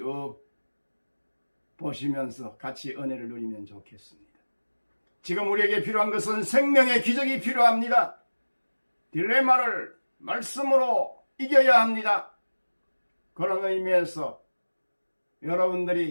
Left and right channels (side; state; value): both; inverted; correlation -1.00